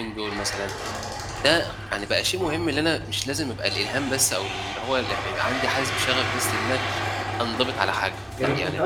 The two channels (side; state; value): both; identical; correlation 1.00